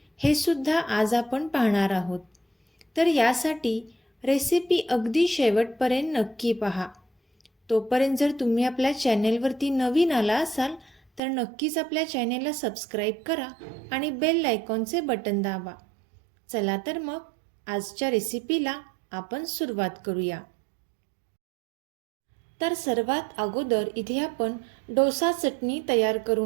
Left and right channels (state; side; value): drops out; left; at 11.2 s